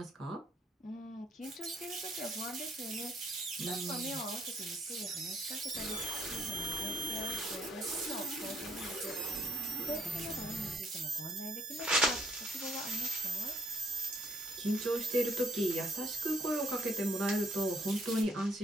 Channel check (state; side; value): normal; both; correlation 0.68